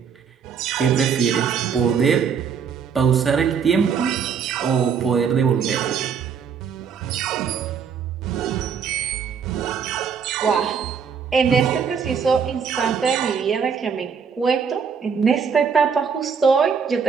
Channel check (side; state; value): left; quieter; 6.6 dB